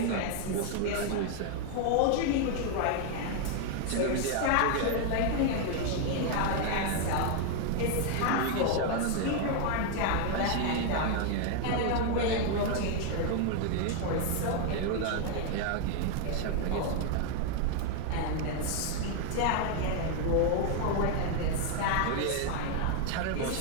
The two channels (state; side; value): different; both; correlation 0.00